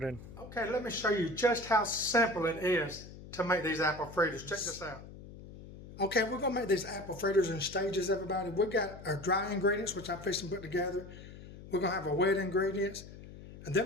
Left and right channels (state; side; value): noise; left; hum, 15 dB below the sound